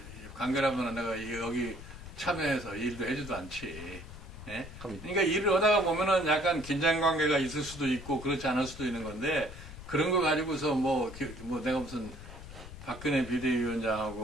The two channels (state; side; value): noise; left; rumble, 14 dB below the sound